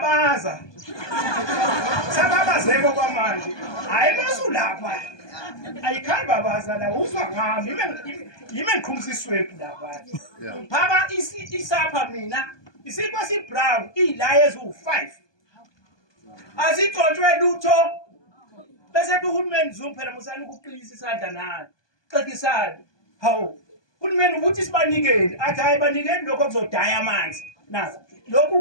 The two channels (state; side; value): late; right; 1.2 ms